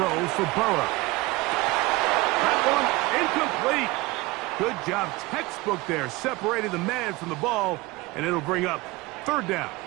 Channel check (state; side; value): quieter; left; 21.7 dB